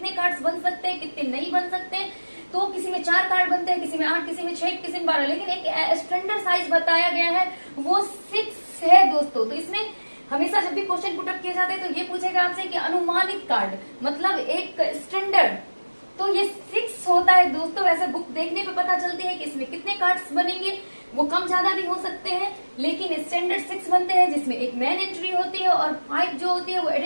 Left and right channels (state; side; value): inverted; both; correlation -1.00